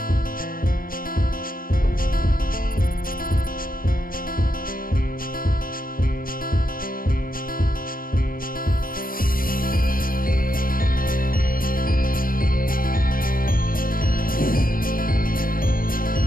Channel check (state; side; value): late; right; 0.41 ms